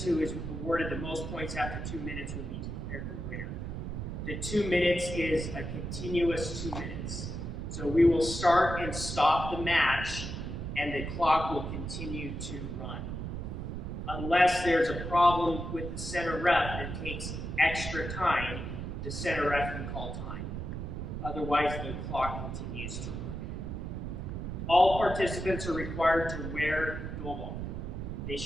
who is awarded the most points after 2 minutes will be declared the winner. The 2 minutes is a continuous 2 minutes. So we will start and stop the match, and the clock will continue to run. Unless there's a problem with the center ref that takes extra time, the center ref can call time. Otherwise, the clock continues to run. All participants are required to wear dobok. They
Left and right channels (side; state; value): right; noise; rumble, 5 dB below the sound